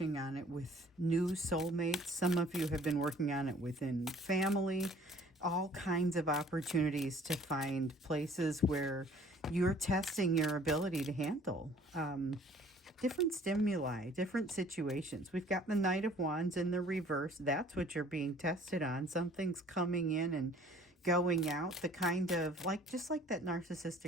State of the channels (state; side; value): normal; both; correlation 0.54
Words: on it with new soulmates. Some of you have been working on it within family. All kinds of opportunities to find places where you're testing your ability to handle different stimuli, different situations. We've got the Knight of Wands in the reverse. That's what you're being tested on. Something's coming in and going out, the kind of like, just like that